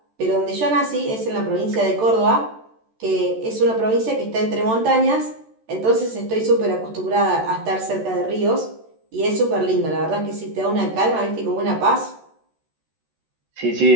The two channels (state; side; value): late; left; 13 ms